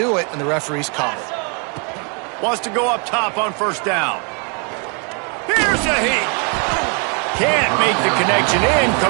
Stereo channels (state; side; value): quieter; left; 36.1 dB